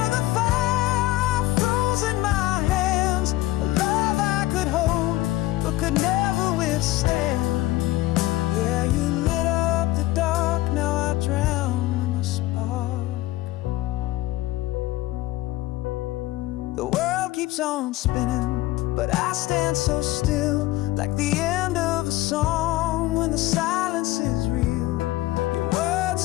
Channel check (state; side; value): quieter; right; 17.2 dB